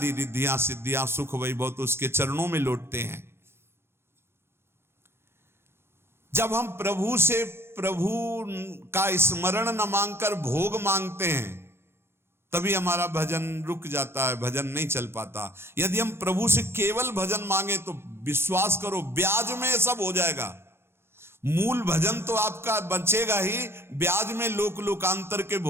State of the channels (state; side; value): late; left; 0.12 ms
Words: रिद्धियां सिद्धियां सुख वैभव तो उसके चरणों में लौटते हैं। जब हम प्रभु से प्रभु का स्मरण न मांगकर भोग मांगते हैं, तभी हमारा भजन रुक जाता है, भजन नहीं चल पाता। यदि हम प्रभु से केवल भजन मांगे तो विश्वास करो ब्याज में सब हो जाएगा। मूल भजन तो आपका बचेगा ही, ब्याज में लोकांतर के